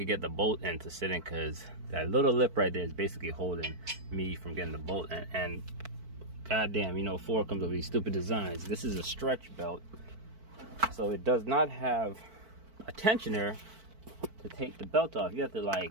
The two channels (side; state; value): left; late; 4.5 ms